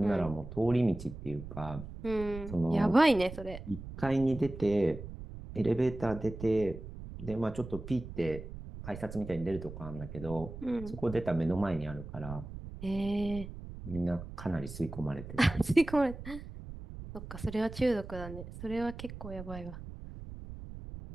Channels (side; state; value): right; noise; rumble, 11 dB below the sound